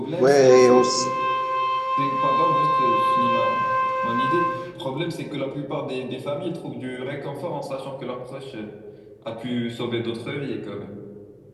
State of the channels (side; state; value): both; identical; correlation 1.00